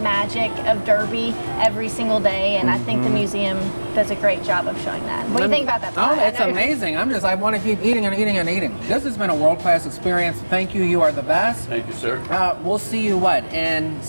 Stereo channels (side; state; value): both; inverted; correlation -1.00